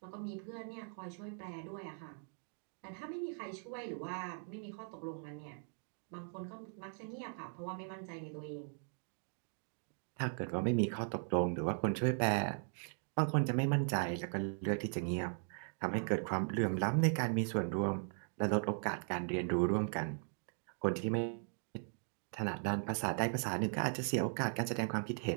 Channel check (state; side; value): silent; left; 52 dB below the other